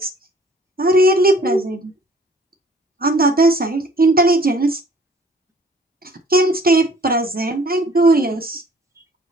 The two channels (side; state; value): both; normal; correlation 0.55